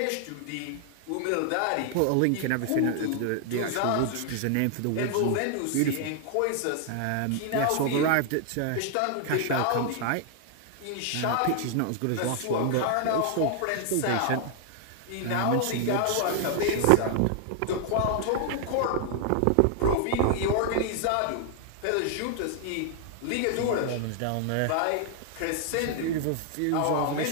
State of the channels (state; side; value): different; both; correlation 0.00